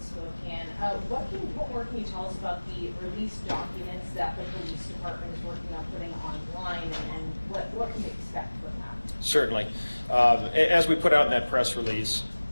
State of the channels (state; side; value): inverted; both; correlation -1.00